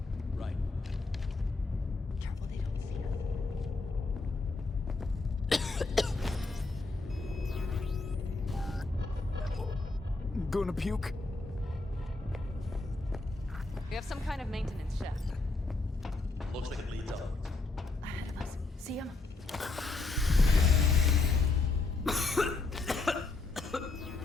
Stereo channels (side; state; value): right; quieter; 3.5 dB